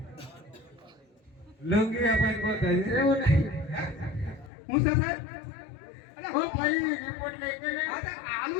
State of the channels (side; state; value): right; drops out; at 4.5 s